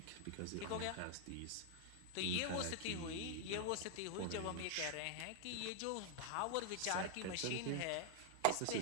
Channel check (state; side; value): different; both; correlation -0.01